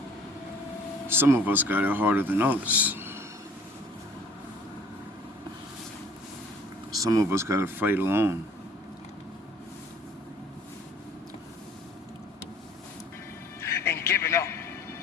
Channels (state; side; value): normal; both; correlation 0.53